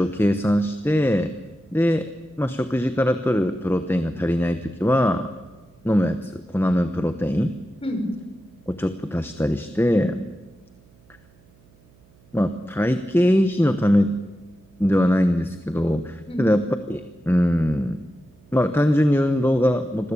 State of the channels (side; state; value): right; noise; hum, 30 dB below the sound